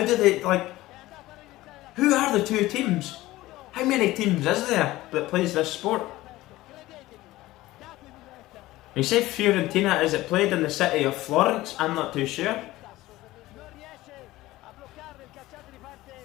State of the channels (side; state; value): right; quieter; 17.4 dB